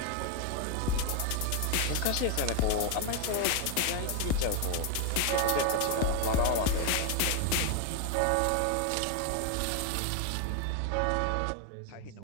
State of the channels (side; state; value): both; different; correlation 0.01